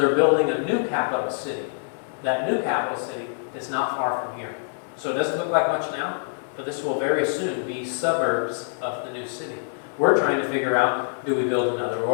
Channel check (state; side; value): silent; right; 62 dB below the other